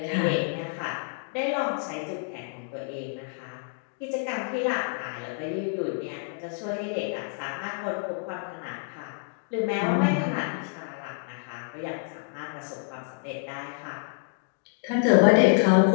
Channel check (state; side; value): silent; right; 59 dB below the other